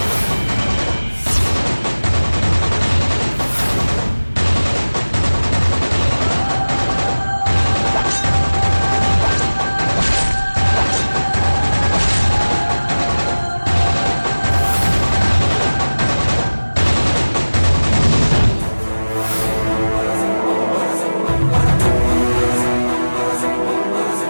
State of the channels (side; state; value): both; inverted; correlation -1.00